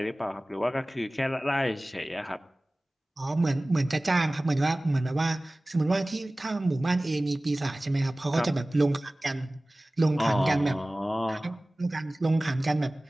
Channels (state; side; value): normal; both; correlation 0.98